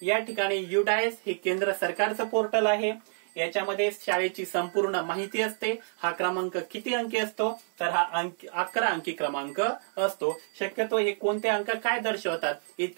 या ठिकाणी UDIS हे केंद्र सरकारचं पोर्टल आहे. याच्यामध्ये शाळेची संपूर्ण माहिती असते. हा क्रमांक किती अंकी असतो? तर हा 11 अंकी क्रमांक असतो. शक्यतो हे कोणते अंक काय दर्शवतात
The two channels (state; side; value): silent; left; 59 dB below the other